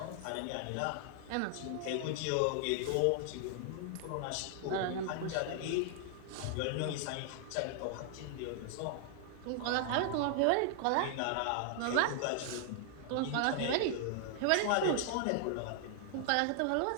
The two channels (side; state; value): both; different; correlation 0.00